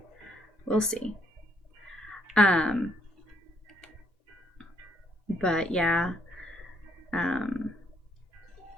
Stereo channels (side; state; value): both; normal; correlation 0.71